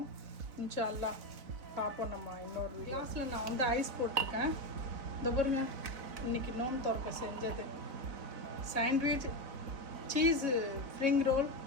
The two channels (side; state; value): left; late; 4.0 ms